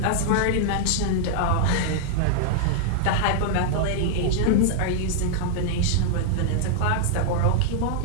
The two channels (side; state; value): both; different; correlation -0.01